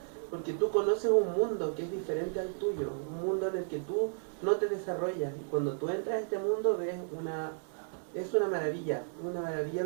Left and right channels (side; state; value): left; silent; 56 dB below the other